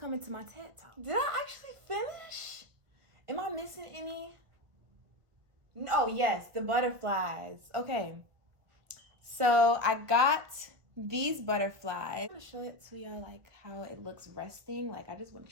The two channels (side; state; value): left; late; 1.5 ms